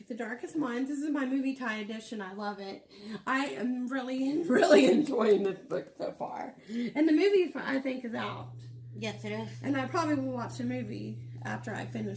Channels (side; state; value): both; identical; correlation 1.00